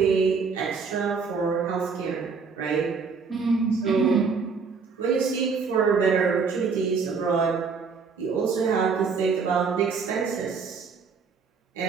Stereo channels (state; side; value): quieter; left; 5.2 dB